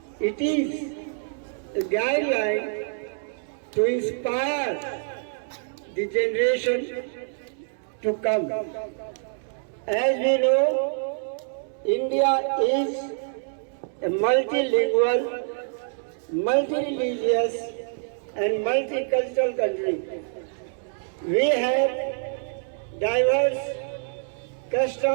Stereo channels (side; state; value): left; silent; digital silence